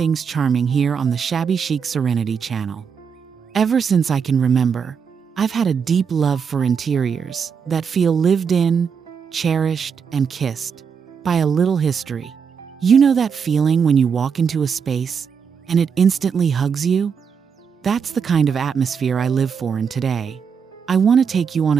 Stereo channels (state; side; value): quieter; left; 6.6 dB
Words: charming here on the Shabby Chic Serenity channel. Ever since I can remember, I've had a deep love for interiors that feel lived in, cherished, and kissed by a little history. You know that feeling when you walk into a space and it instantly hugs you? That's the kind of atmosphere I live for in today. I want to take you on